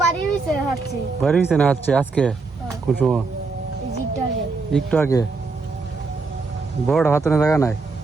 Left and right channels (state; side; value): quieter; left; 4.1 dB